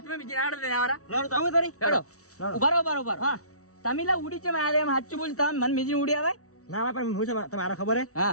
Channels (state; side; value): late; right; 0.65 ms